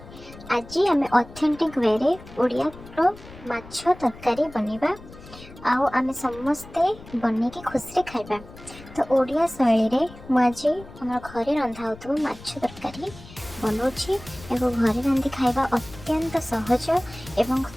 आज आम ऑथेंटिक वे रे ओडिया रो माछ तरकारी बनेबा आउ आम समस्ते बन के खुशी खाइबा। तो ओडिया शैली रे मु आज हमर घरे रंधा होतो माछ तरकारी बनाउछि एवं घरे रांधि खाइबा अत्यंत सहज एवं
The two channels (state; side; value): noise; left; rumble, 18 dB below the sound